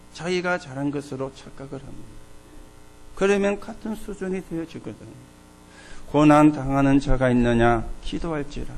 자기가 잘한 것으로 착각을 합니다. 그러면 같은 수준이 되어지거든요. 고난 당하는 자가 있느냐? 기도할지라.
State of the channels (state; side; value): identical; both; correlation 1.00